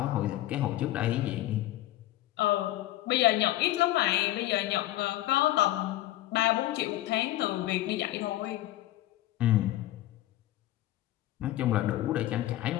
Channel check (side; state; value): right; quieter; 15.3 dB